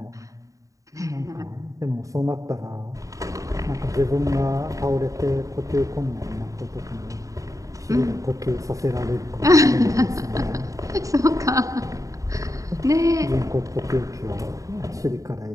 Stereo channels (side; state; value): left; late; 0.16 ms